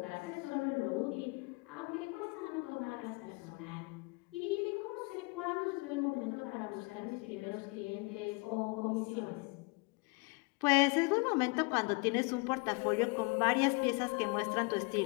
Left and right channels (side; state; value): right; quieter; 29.0 dB